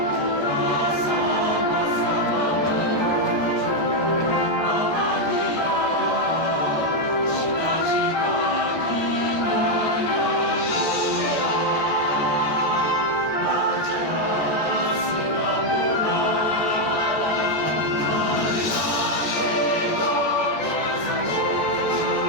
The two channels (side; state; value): right; late; 14 ms